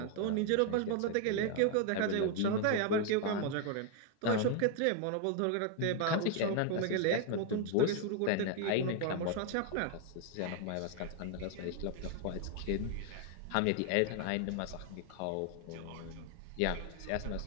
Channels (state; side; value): different; both; correlation 0.01